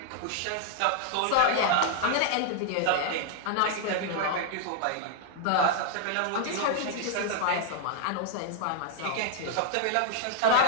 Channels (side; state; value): both; different; correlation 0.00